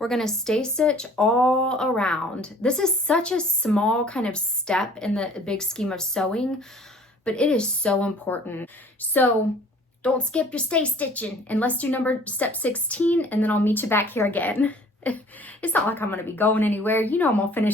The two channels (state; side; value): normal; both; correlation 0.52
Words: gonna stay stitch all around. This is such a small kind of step in the big scheme of sewing, but it is so important. So don't skip your stay stitching, and let's do step 16, and then I'll meet you back here again. It's not like I'm gonna be going anywhere. You know I'm gonna